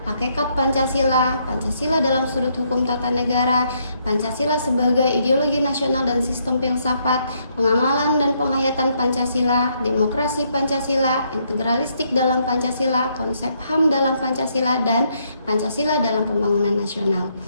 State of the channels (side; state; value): both; inverted; correlation -0.74